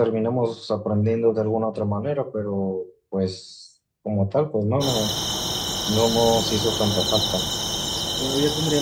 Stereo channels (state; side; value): identical; both; correlation 1.00